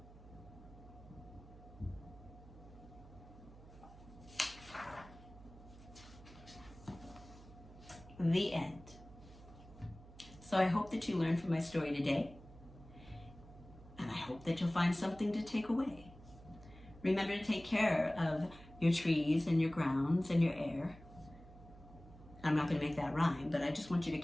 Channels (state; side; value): noise; right; hum, 19 dB below the sound